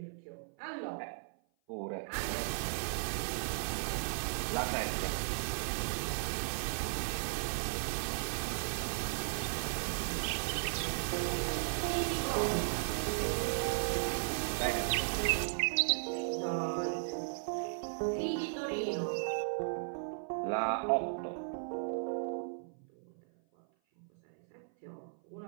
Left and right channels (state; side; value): silent; left; 54 dB below the other